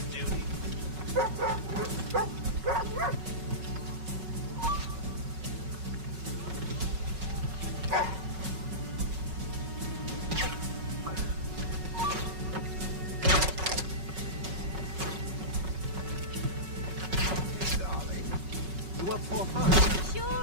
duty. Darling, you up for fun?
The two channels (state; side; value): late; left; 5.4 ms